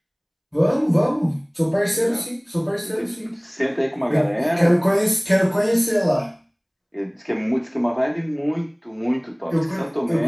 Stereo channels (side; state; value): both; identical; correlation 1.00